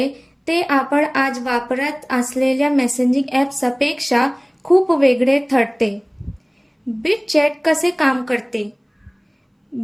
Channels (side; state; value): both; identical; correlation 1.00